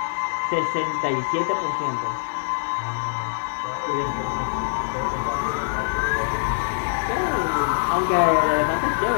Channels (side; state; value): right; silent; 60 dB below the other